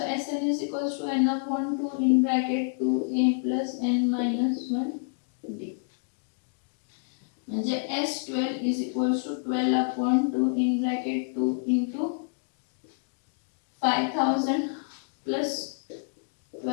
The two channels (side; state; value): right; silent; digital silence